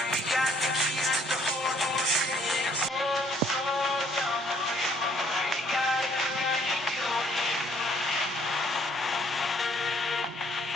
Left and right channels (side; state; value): both; normal; correlation 0.64